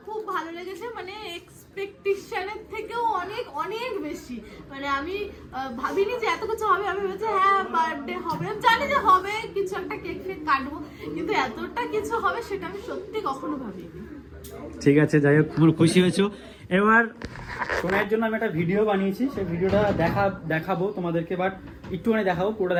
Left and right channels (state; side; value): identical; both; correlation 1.00